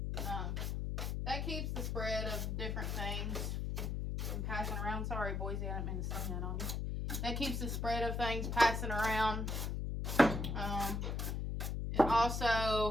That keeps the spread of different things from passing around. Sorry, Boise, I didn't mean to slam that on you. That keeps the spread of things passing around. It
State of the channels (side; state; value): left; noise; hum, 1 dB below the sound